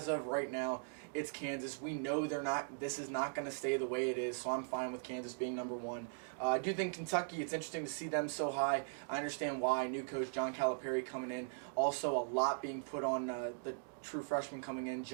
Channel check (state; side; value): silent; left; digital silence